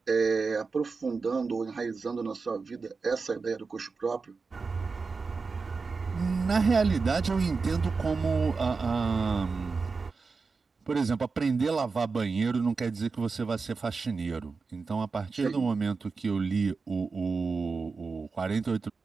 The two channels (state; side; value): quieter; left; 4.5 dB